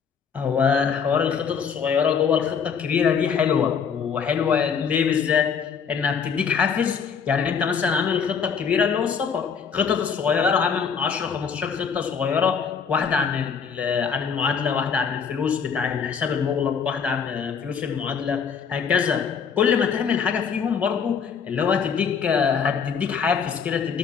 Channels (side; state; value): right; quieter; 6.5 dB